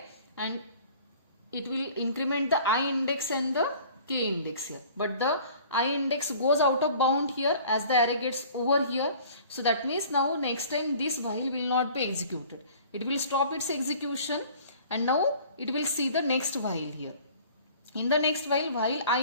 and it will increment the I index and the k index here. But the I index goes out of bound here as the array gets over here. So that means now next time this while will not be executed. It will stop its execution and now it will see the next while here. In the next while I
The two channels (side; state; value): both; inverted; correlation -0.49